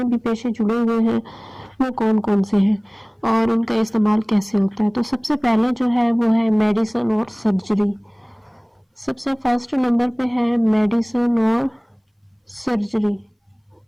भी पेशे जुड़े हुए हैं वो कौन कौन से हैं और उनका इस्तेमाल कैसे होता है। तो सबसे पहले जो है वो है मेडिसिन और सर्जरी। सबसे फर्स्ट नंबर पे है मेडिसिन और सर्जरी।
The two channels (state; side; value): identical; both; correlation 1.00